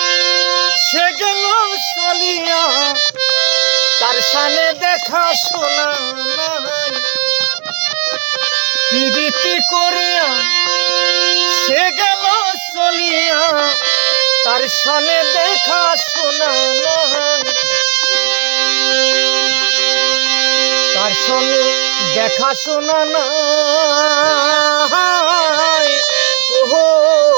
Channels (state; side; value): quieter; left; 35.0 dB